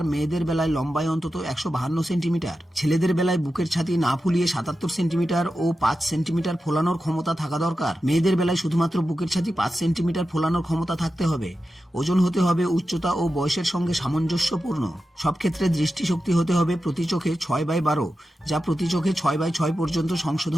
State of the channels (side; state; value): both; normal; correlation 0.91